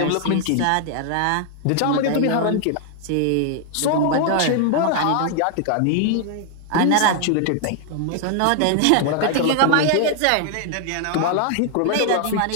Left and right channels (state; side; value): different; both; correlation 0.00